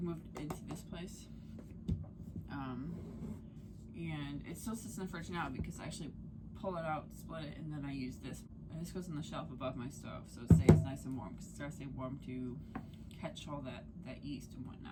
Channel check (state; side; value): identical; both; correlation 1.00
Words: we moved into this place. And it still sits in the fridge now because I actually pull it out, split it, and then I use this. And this goes on the shelf above my stove, so it stays nice and warm, because it starts to stay warm to catch all that yeast and